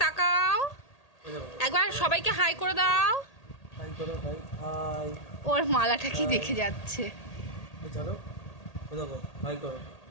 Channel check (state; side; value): late; right; 1.8 ms